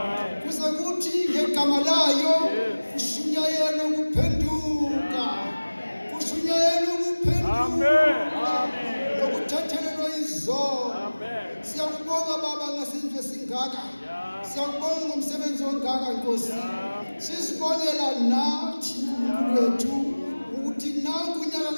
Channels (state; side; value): inverted; both; correlation -1.00